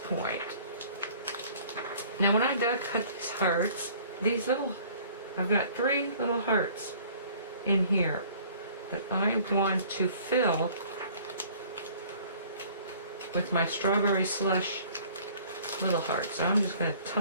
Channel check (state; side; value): inverted; both; correlation -0.53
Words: Now when I cut these hearts, I've got 3 little hearts in here that I want to fill with my strawberry slush little hearts. So I'm just going to